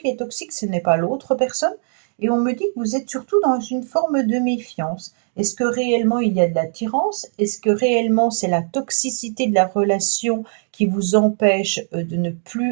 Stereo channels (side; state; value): left; silent; digital silence